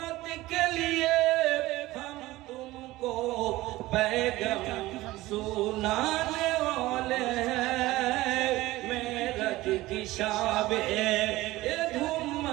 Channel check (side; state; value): left; quieter; 18.0 dB